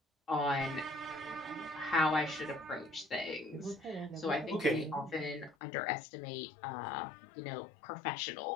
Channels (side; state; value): right; drops out; at 5.6 s